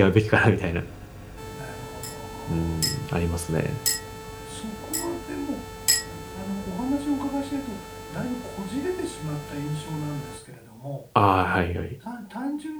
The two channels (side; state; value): both; identical; correlation 1.00